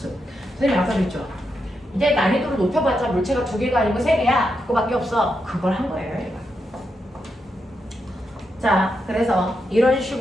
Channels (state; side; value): normal; both; correlation 0.84